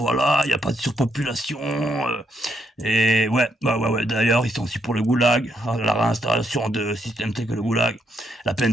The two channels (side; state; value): both; normal; correlation 0.76